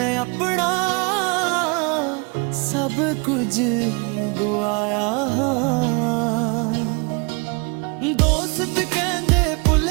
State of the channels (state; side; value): quieter; left; 31.9 dB